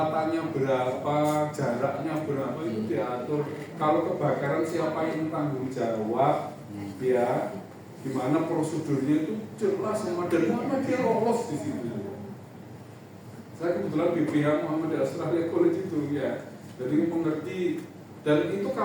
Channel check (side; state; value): both; identical; correlation 1.00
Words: berapa, jaraknya berapa itu diatur. Kalau kebakaran siapa yang tanggung jawab, ya, dimana prosedurnya itu jelas sama dan Muhammadiyah lolos di situ. Saya kebetulan BPH Muhammadiyah Australia College itu ya, jadi mengerti dan itu